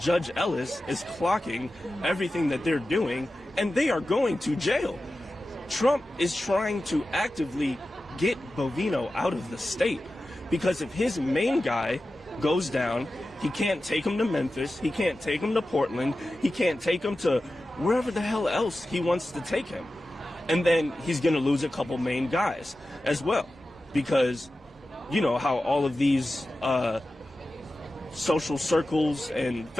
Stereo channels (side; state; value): both; normal; correlation 0.94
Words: Ellis is clocking everything that they're doing, and they are going to jail. Trump is trying to actively get Bovino out of the state, because if his main guy goes down, he can't take him to Memphis, he can't take him to Portland, he can't take him to wherever the hell else he wants to take him. And then he's going to lose a couple main guys as well, because you know how all of these social circles and